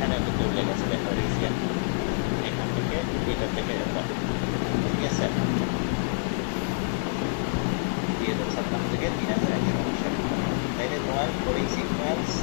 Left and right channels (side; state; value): right; silent; 56 dB below the other